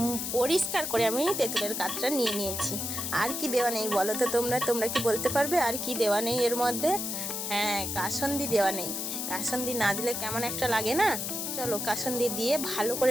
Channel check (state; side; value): noise; left; hiss, 3 dB below the sound